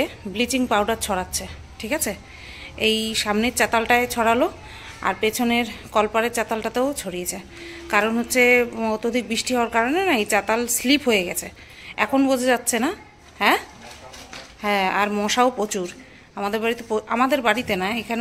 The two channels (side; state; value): both; identical; correlation 1.00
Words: ব্লিচিং পাউডার ছড়াচ্ছে। ঠিক আছে, এই সামনের চাতালটায় ছড়ালো আর পেছনের কলপারের চাতালটাতেও ছড়িয়েছে। কারণ হচ্ছে অত্যধিক বৃষ্টি হওয়ার কারণে না এই চাতাল স্লিপ হয়ে গেছে, এখন বোঝা যাচ্ছে না। হ্যাঁ হ্যাঁ, আর মশাও প্রচুর আমাদের বাড়িতে না,